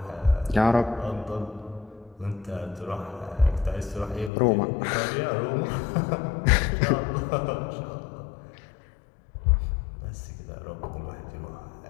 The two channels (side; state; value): right; drops out; at 4.3 s